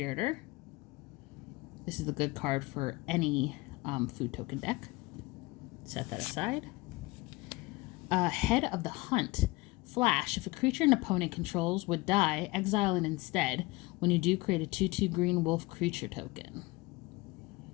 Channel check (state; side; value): quieter; right; 22.4 dB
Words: This is the good card for any food token deck. Set that aside. Head of the Hunt. Flash. If a creature an opponent controls would die, exile it instead. When you do, create a 2/2 green wolf creature token.